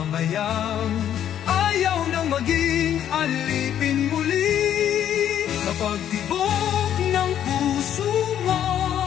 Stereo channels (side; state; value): right; quieter; 10.2 dB